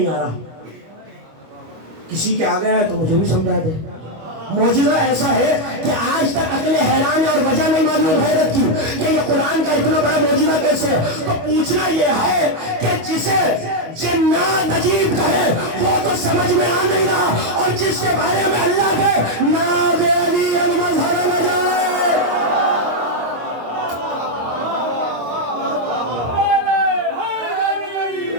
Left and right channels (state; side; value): late; left; 25 ms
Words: آ رہا۔ کسی کے آگے ہے تو مجھے بھی سمجھا دے۔ معجزہ ایسا ہے کہ آج تک عقل حیران ہے اور وجہ نہیں معلوم حیرت کی کہ یہ قرآن کا اتنا بڑا معجزہ کیسے ہے۔ تو پوچھنا یہ ہے کہ جسے جنات عجیب کہے وہ تو سمجھ میں آ نہیں رہا، اور جس کے بارے میں اللہ کے ناب علی المظہر نہ جائے۔